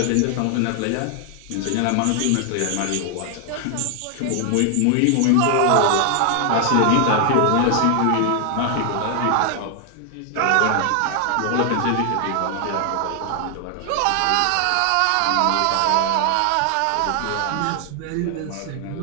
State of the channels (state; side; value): different; both; correlation 0.00